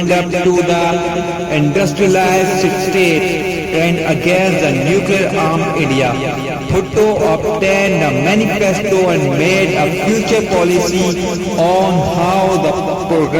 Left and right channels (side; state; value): both; identical; correlation 1.00